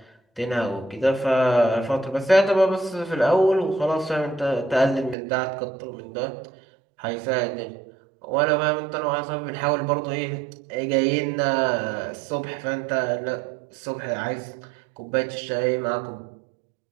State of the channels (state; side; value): drops out; left; at 5.2 s